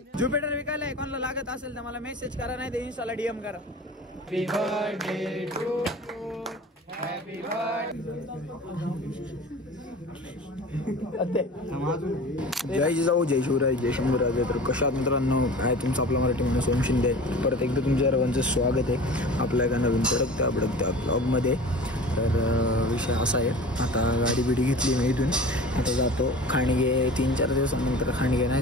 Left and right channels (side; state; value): both; normal; correlation 0.38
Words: ज्युपिटर विकायला आहे. कोणाला लागत असेल तर मला मेसेज करा, नाही तर इन्स्टाला डीएम करा. Happy birthday to you. Happy जय जिजाऊ, जय शिवराय, जय शंभूराज. तर कशात मित्रांनो, काय तुमचं आपला मराठी माणूस ओम शिंदे. परत एकदा तुमच्या सर्वांचं स्वागत आहे आपल्या एका नवीन तडकत्या ब्लॉगमध्ये. तर विषय असा आहे, आता गाडी बिडी घेतली मी इथून. आता जातो खांडगे. 3-4 दिवसानंतर खांडगे नाही